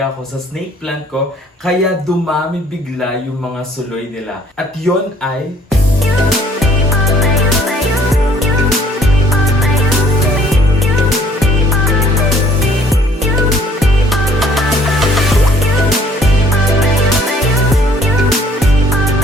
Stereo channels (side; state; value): both; normal; correlation 0.60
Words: ko sa snake plant ko, kaya dumami bigla yung mga suloy nila. At yon ay